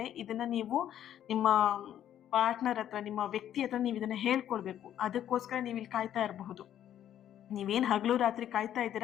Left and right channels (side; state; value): right; quieter; 10.8 dB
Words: ಇದನ್ನ ನೀವು ನಿಮ್ಮ ಪಾರ್ಟ್ನರ್ ಹತ್ರ, ನಿಮ್ಮ ವ್ಯಕ್ತಿ ಹತ್ರ ನೀವು ಇದನ್ನ ಹೇಳ್ಕೊಳ್ಬೇಕು. ಅದಕ್ಕೋಸ್ಕರ ನೀವು ಇಲ್ಲಿ ಕಾಯ್ತಾ ಇರಬಹುದು. ನೀವೇನು ಹಗಲು ರಾತ್ರಿ ಕಾಯ್ತಾ